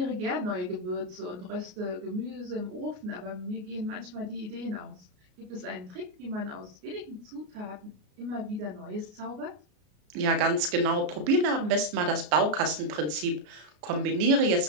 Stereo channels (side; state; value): left; late; 33 ms